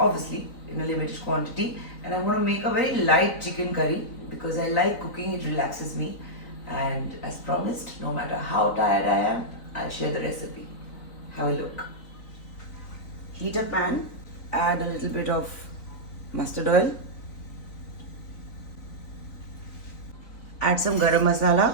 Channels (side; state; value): right; late; 3.9 ms